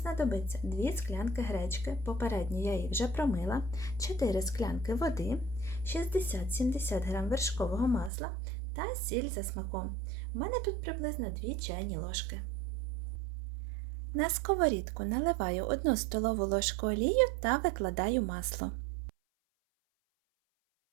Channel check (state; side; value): drops out; left; at 8.1 s